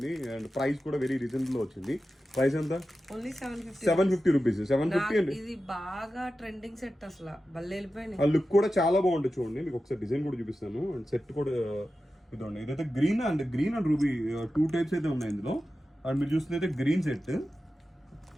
అండ్ ప్రైస్ కూడా వెరీ రీజనబుల్ వచ్చింది. ప్రైస్ ఎంత? Only 750 rupees. 750 అండి. ఇది బాగా ట్రెండింగ్ సెట్ అసలు భలే వెళ్ళిపోయింది. ఆ లుక్ కూడా చాలా బాగుంటుంది చూడండి. మీకు ఒకసారి డిజైన్ కూడా చూపిస్తాను. అండ్ సెట్ కూడా ఇదండి. ఇదైతే గ్రీన్ అండ్ రూబీ 2 టైప్స్ అయితే ఉన్నాయి ఇందులో. అండ్ మీరు చూస్తున్నైతే గ్రీన్ సెట్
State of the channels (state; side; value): normal; both; correlation 0.93